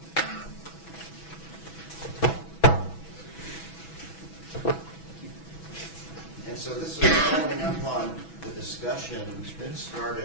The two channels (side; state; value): right; late; 6.1 ms